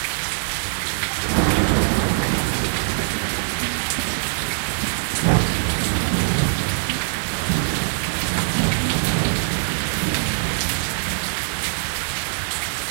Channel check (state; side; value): silent; left; 58 dB below the other